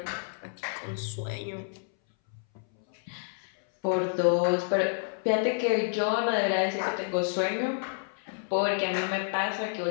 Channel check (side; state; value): right; silent; 58 dB below the other